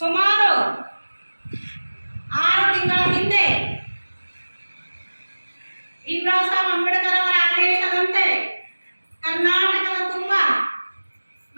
6 ತಿಂಗಳ ಹಿಂದೆ ಭೀಮರಾವ್ ಸಾಹೇಬ್ ಅಂಬೇಡ್ಕರ್ ಅವರ ಆದೇಶದಂತೆ ಕರ್ನಾಟಕದ ತುಂಬ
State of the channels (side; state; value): both; inverted; correlation -1.00